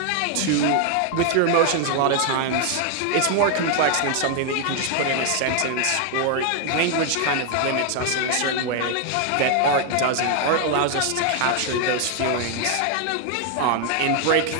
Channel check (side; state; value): both; different; correlation 0.00